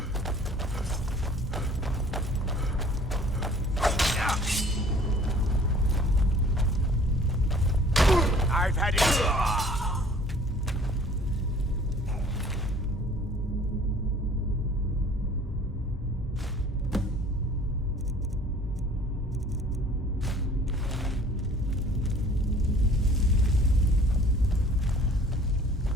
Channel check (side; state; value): both; normal; correlation 0.52